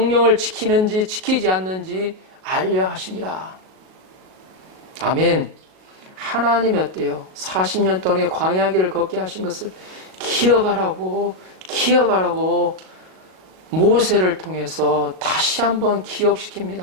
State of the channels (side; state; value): left; late; 38 ms